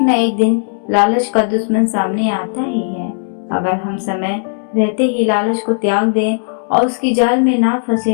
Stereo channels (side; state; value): right; silent; digital silence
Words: न एक दिन लालच का दुश्मन सामने आता ही है। अगर हम समय रहते ही लालच को त्याग दें और उसकी जाल में ना